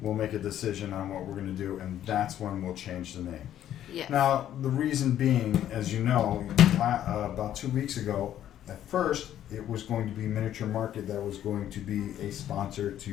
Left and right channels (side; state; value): right; quieter; 11.3 dB